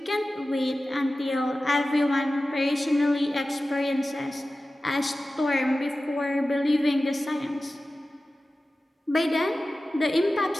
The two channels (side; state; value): both; normal; correlation 0.95